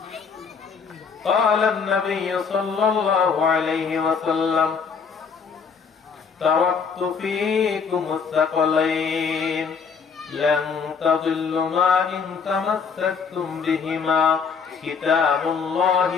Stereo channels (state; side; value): quieter; right; 5.8 dB